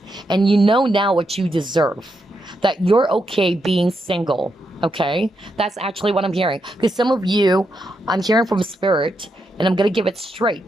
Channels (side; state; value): both; normal; correlation 0.83